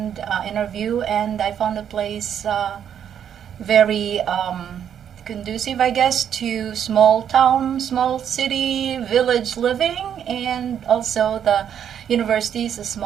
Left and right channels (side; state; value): left; quieter; 9.0 dB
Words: interview, and I found a place very conducive, I guess, to small town, small city, village living, and also the university is a